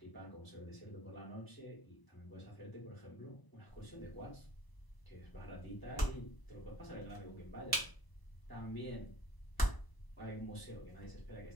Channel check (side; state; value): right; late; 1.0 ms